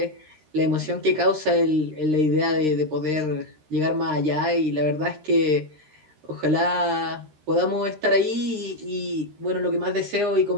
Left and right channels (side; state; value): left; late; 13 ms